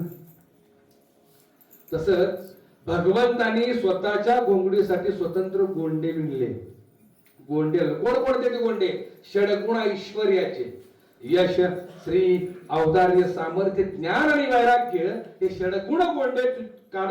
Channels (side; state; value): both; identical; correlation 1.00